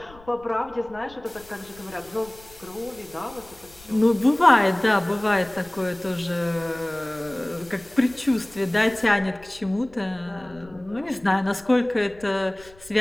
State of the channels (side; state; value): left; noise; rumble, 24 dB below the sound